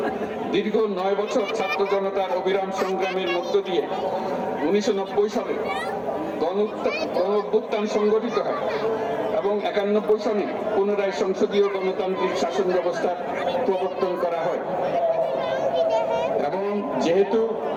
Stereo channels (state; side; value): identical; both; correlation 1.00